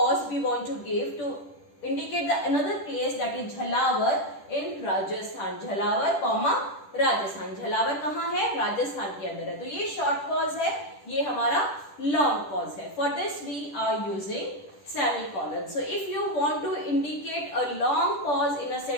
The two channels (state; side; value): late; right; 10 ms